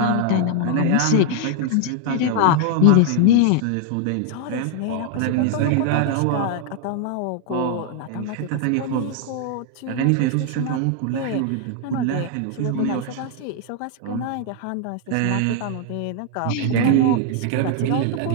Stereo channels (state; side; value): different; both; correlation 0.00